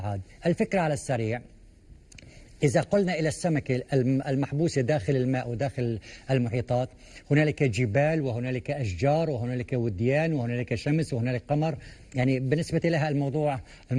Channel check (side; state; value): both; identical; correlation 1.00